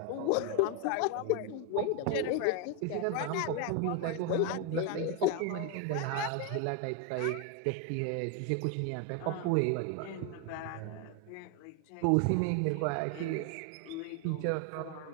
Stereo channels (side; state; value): both; different; correlation 0.01